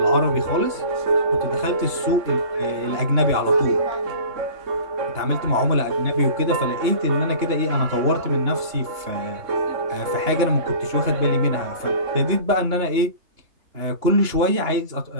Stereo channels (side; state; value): left; late; 2.9 ms